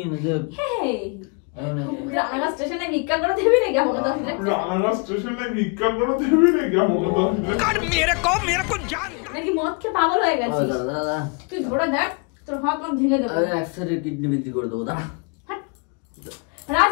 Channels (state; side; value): quieter; right; 34.2 dB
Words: নে। রানাঘাট স্টেশনে ভিক্ষা করে দিবি নাকি আমাকে 10 লাখ? রানাঘাট স্টেশনে ভিক্ষা করে দিবি নাকি আমাকে 10 লাখ? নাকি মদ খেয়ে পাগল হয়ে গেছিস? তুই ধরে দেখ, তোর হাত আমি ভেঙে দেবো। একসাথে কিডনি বিক্রি করে দেবো। দাঁড়া।